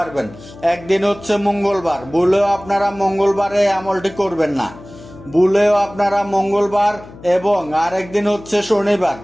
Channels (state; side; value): noise; left; hum, 19 dB below the sound